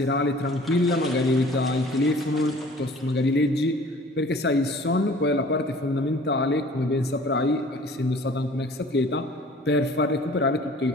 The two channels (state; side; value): normal; both; correlation 0.49